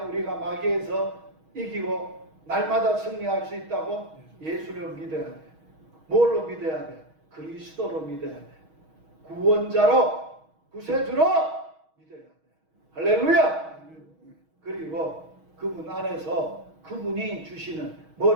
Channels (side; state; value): left; late; 6.3 ms